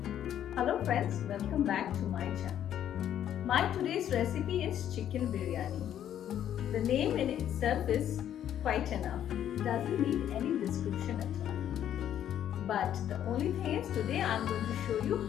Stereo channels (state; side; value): quieter; right; 10.5 dB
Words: friends, welcome back to my channel. My today's recipe is chicken biryani. The name in itself is quite enough. It doesn't need any description at all. But the only thing is today I am going to show you